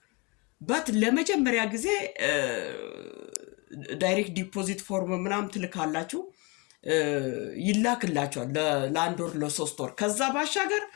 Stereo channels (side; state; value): right; quieter; 29.1 dB